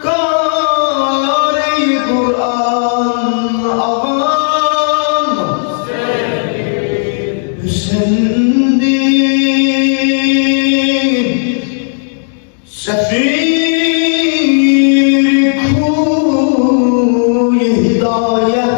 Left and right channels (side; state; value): right; silent; digital silence